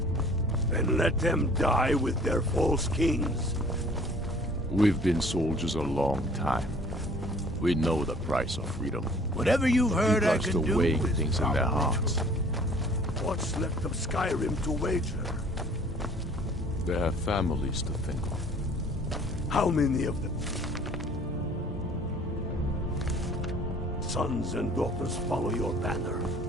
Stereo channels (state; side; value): normal; both; correlation 0.53